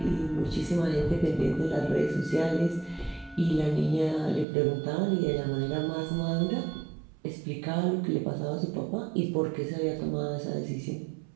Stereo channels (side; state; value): left; drops out; at 4.5 s